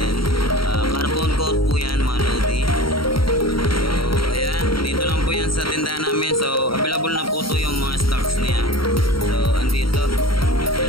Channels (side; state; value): right; late; 0.74 ms